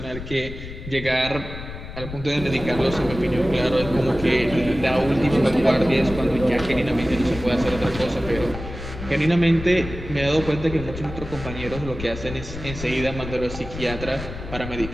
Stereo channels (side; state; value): left; noise; rumble, 10 dB below the sound